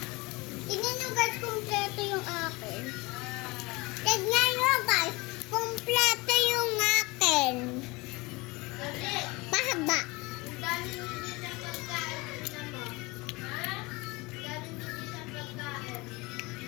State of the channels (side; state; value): right; quieter; 24.0 dB